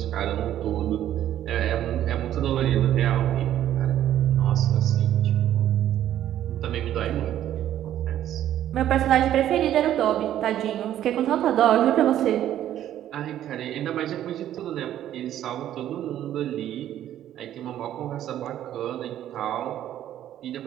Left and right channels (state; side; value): quieter; left; 11.8 dB